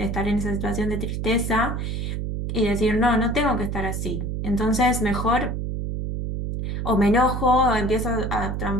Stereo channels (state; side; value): noise; right; hum, 3 dB below the sound